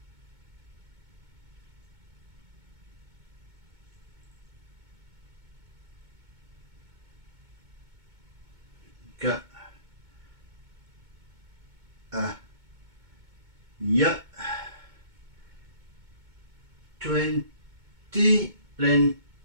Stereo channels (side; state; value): left; late; 2.2 ms